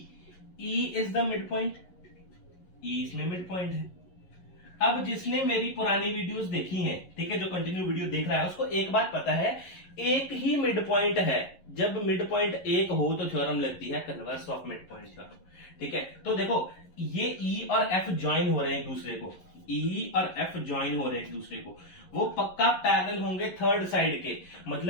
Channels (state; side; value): late; right; 11 ms